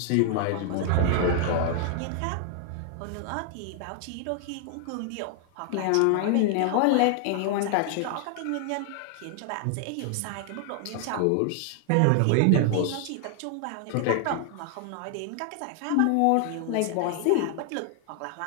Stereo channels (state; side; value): different; both; correlation 0.00